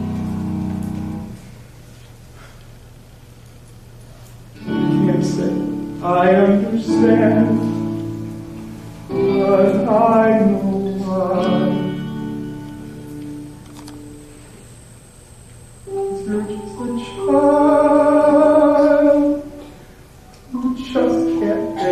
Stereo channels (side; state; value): both; identical; correlation 1.00